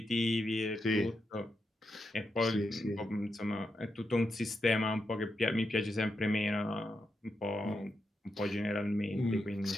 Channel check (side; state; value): both; normal; correlation 0.85